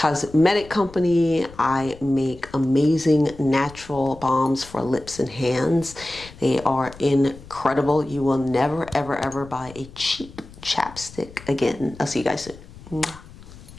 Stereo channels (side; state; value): left; noise; rumble, 19 dB below the sound